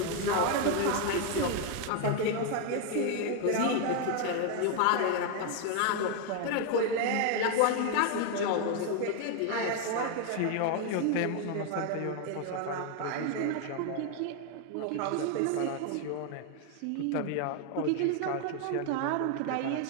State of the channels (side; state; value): both; different; correlation 0.01